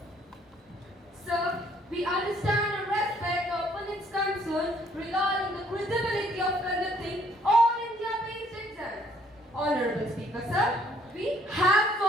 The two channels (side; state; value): both; normal; correlation 0.63